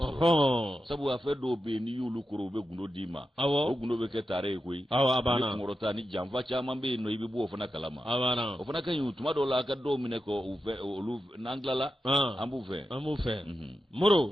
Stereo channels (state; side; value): normal; both; correlation 0.90